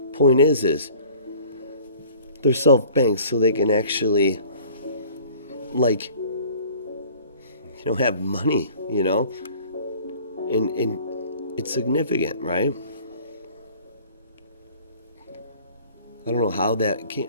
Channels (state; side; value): inverted; both; correlation -0.49